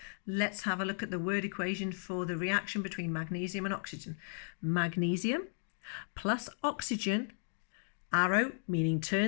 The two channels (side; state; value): right; silent; digital silence